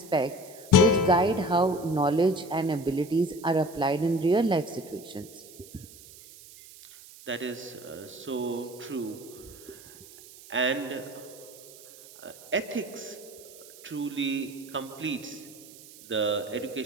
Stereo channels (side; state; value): right; noise; hiss, 20 dB below the sound